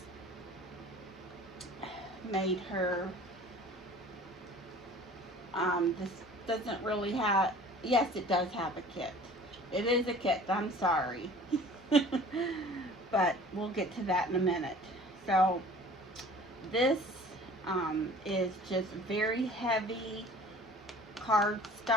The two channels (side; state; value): both; normal; correlation 0.47